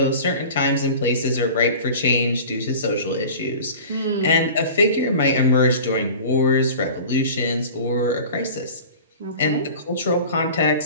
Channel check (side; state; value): both; inverted; correlation -0.39